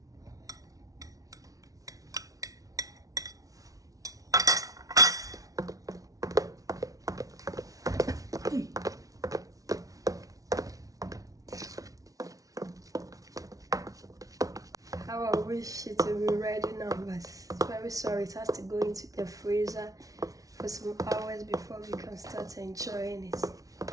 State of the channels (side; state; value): left; late; 0.17 ms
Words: How I wish it would be ready now, but very sorry, it has to go into the freezer for some hours before we can start enjoying it.